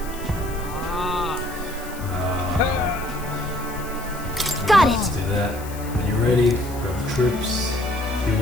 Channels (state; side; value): noise; left; hiss, 16 dB below the sound